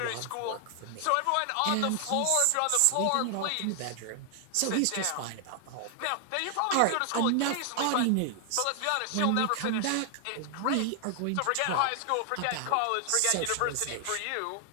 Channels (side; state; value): both; different; correlation 0.00